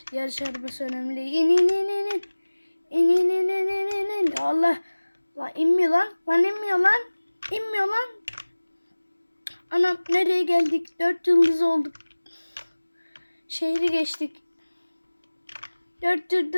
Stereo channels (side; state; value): both; inverted; correlation -1.00